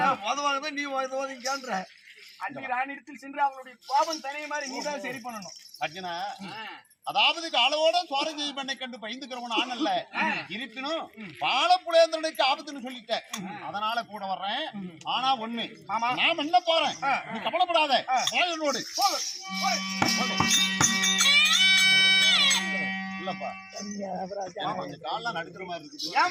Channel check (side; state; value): both; identical; correlation 1.00